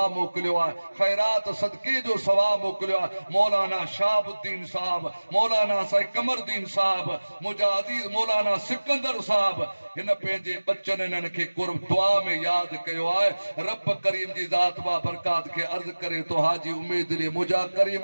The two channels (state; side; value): inverted; both; correlation -1.00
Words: मोकिलियो आहे ख़ैरात सदके जो सवाब मोकिलियो आहे मौलाना शाहबुद्दीन साहब मौलाना साईं कमरदीन साहब मुजाहिदी मौलाना सिकंदर साहब हिन पंहिंजे बच्चन इन्हनि खे कुर्ब दुआ में यादि कयो आहे रब करीम जी ज़ात बा बरकात खे अर्ज़ करे तो हाजी उम्मीद अली मुंहिंजा